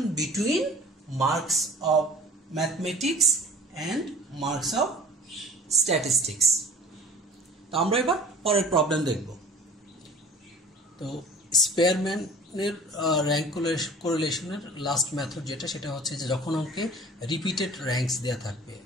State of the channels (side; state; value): both; normal; correlation 0.43